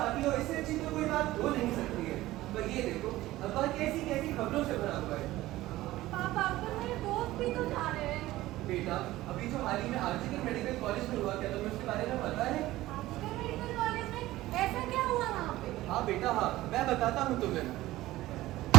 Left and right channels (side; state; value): left; quieter; 16.6 dB